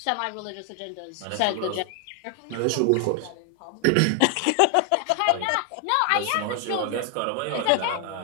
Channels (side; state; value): both; different; correlation 0.00